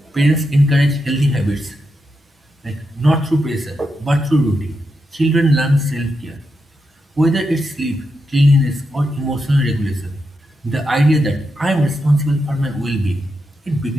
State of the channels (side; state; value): both; normal; correlation 0.85